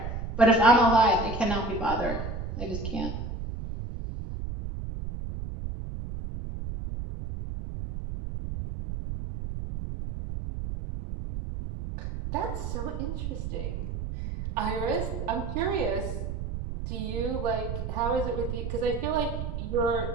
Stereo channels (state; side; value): noise; right; rumble, 5 dB below the sound